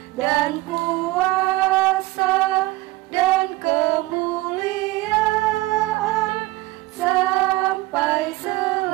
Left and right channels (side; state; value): left; quieter; 19.7 dB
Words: dan kuasa dan kemuliaan sampai